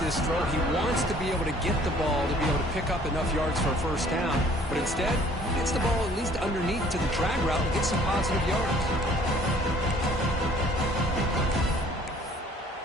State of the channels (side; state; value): both; normal; correlation 0.56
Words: throw. He wants to be able to get the ball to be able to pick up enough yards for a first down. But instead, he gets the ball at least underneath to the drag route and gets some positive yards.